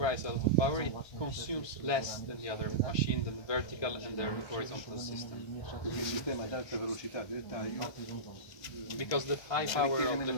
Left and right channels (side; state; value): right; late; 1.2 ms